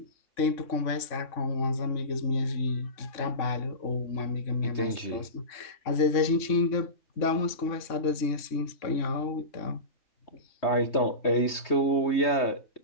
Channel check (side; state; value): right; late; 3.6 ms